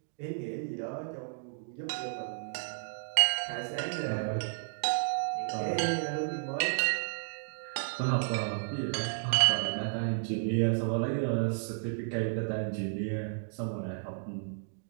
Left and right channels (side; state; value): left; silent; digital silence